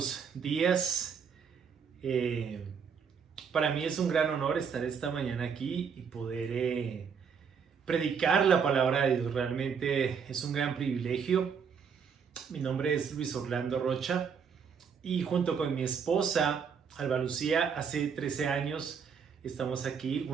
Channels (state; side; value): quieter; left; 6.6 dB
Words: días. Para mí es un gran honor estar esta mañana aquí y poder predicar la palabra de Dios. Realmente es un gran privilegio. Mi nombre es Luis Orlando Rocha y junto con mi esposa, Alba Lucía, hace 13 años estamos aquí,